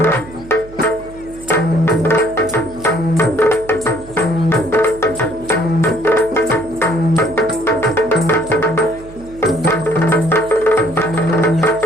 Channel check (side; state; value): right; noise; hum, 18 dB below the sound